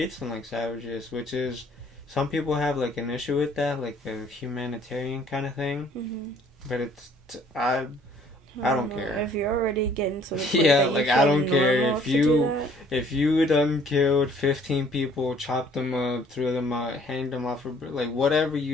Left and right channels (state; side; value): normal; both; correlation 0.58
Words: them like savages, which is some people have like an issue with that, like a humanitarian kind of thing. Mm-hmm. But I don't care. If you're already getting to the point yeah, like I don't care if you done killed 15 people, chopped them up, threw them out, hanged them off, like whatever